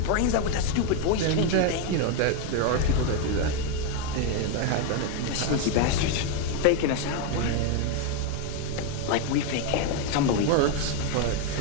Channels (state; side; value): different; both; correlation 0.01